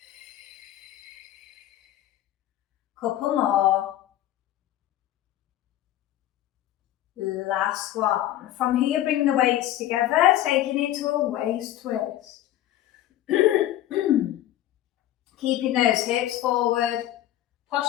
Couple more. Last one. From here, bring the weights together, taking it to a waist twist. Keeping those hips forward,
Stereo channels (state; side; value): quieter; right; 13.3 dB